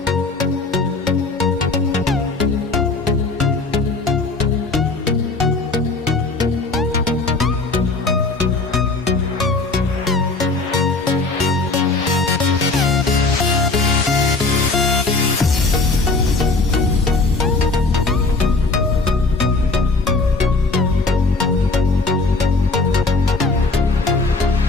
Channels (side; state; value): right; quieter; 3.6 dB